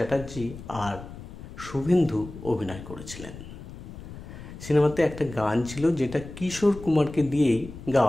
আর শুভেন্দু অভিনয় করেছিলেন। সিনেমাতে একটা গান ছিল যেটা কিশোর কুমারকে দিয়েই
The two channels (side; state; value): left; noise; rumble, 13 dB below the sound